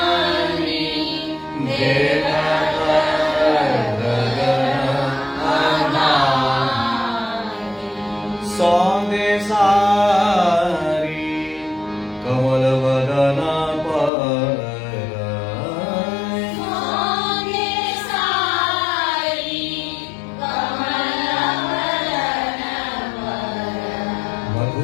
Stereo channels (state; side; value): drops out; right; at 14.1 s